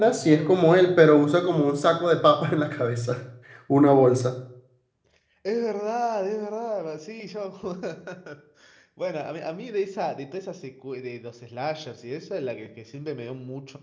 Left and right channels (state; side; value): identical; both; correlation 1.00